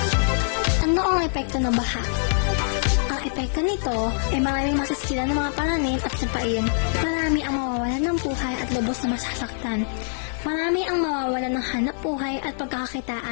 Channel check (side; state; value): right; silent; digital silence